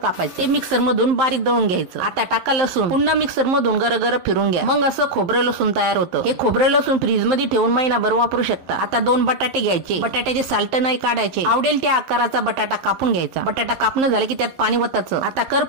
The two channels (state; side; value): late; left; 11 ms